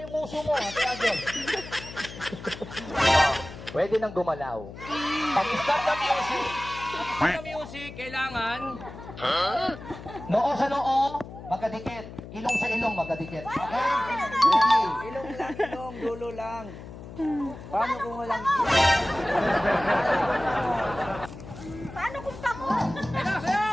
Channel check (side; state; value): left; noise; hum, 13 dB below the sound